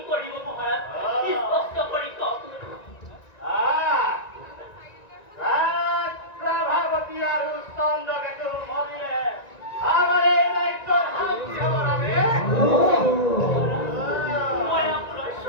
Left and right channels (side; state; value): right; late; 1.9 ms